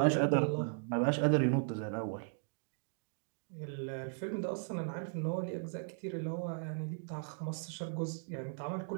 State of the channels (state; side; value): silent; left; digital silence